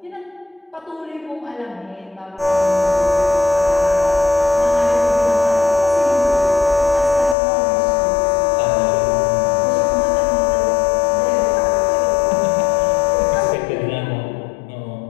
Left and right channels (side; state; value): right; drops out; at 7.4 s